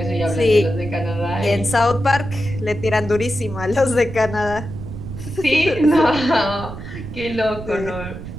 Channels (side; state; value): right; noise; rumble, 10 dB below the sound